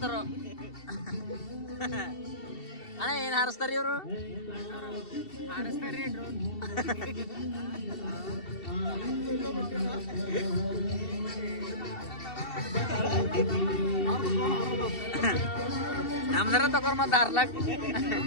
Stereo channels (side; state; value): right; late; 2.7 ms